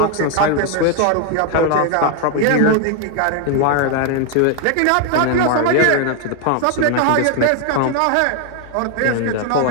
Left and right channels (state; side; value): different; both; correlation 0.00